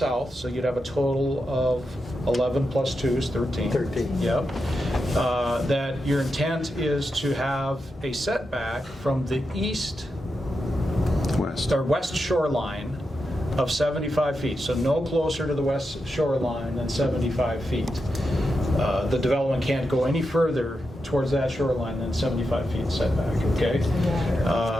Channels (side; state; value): both; normal; correlation 0.87